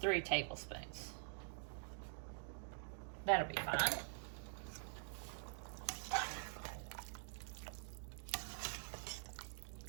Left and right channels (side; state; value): left; silent; digital silence